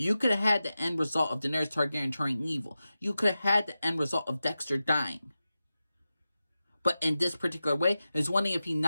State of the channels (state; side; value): inverted; both; correlation -0.93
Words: could have had the end result of Daenerys Targaryen turning evil. You could have had the end result of Dexter dying. But in this particular way, it's one thing if he